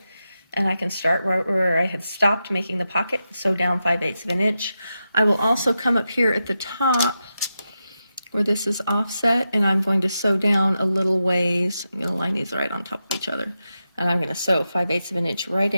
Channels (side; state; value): both; inverted; correlation -0.89